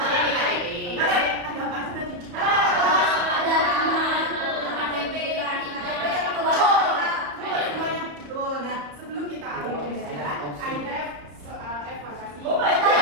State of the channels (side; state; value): left; late; 34 ms